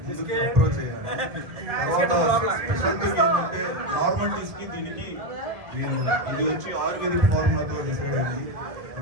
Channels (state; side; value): late; left; 1.7 ms